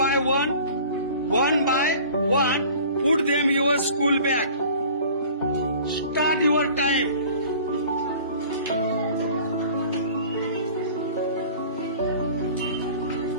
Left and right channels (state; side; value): inverted; both; correlation -0.45